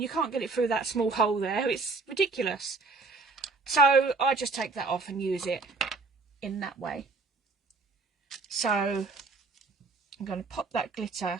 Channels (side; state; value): left; quieter; 3.9 dB